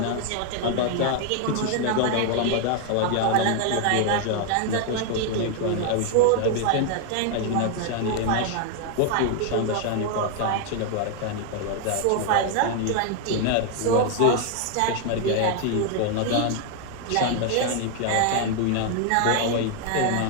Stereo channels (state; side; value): different; both; correlation 0.00